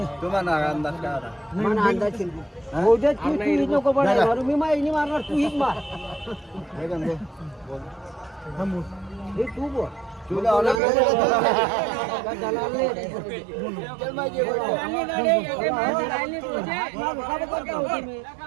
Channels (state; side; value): drops out; left; at 10.8 s